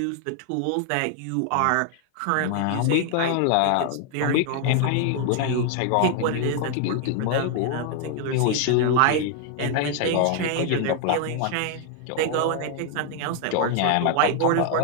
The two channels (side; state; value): both; different; correlation 0.00